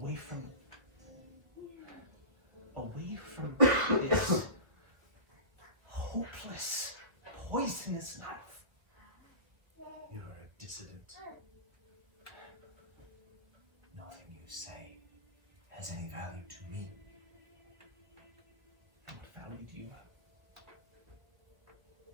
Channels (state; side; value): late; left; 1.5 ms